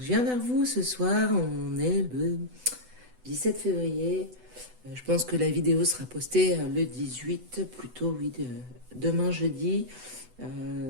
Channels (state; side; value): late; left; 8.0 ms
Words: viens vers vous ce soir, on est le 17 février. Je pense que la vidéo sera postée le 18, plutôt oui, demain jeudi,